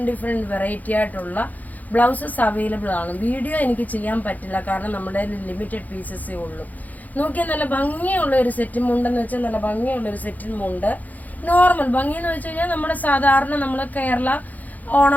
വെറൈറ്റി ആയിട്ടുള്ള ബ്ലൗസസ് അവൈലബിൾ ആണ്. വീഡിയോ എനിക്ക് ചെയ്യാൻ പറ്റില്ല, കാരണം നമ്മുടെ ലിമിറ്റഡ് പീസസേ ഉള്ളൂ. നോക്കിയാൽ നല്ല ഭംഗിയുള്ള ഒരു സെറ്റും മുണ്ടെന്ന് വെച്ചാൽ നല്ല ഭംഗിയുള്ള ഒരു സെറ്റും മുണ്ട്. നോർമൽ ഭംഗി എന്ന് വെച്ച് കഴിഞ്ഞാൽ നമ്മുടെ സാധാരണ നമ്മൾ കേരള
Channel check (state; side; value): late; right; 0.080 ms